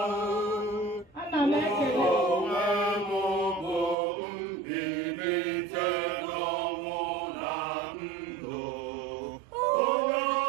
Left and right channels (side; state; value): left; drops out; at 4.0 s